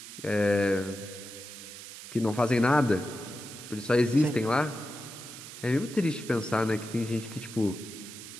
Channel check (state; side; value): noise; right; hiss, 13 dB below the sound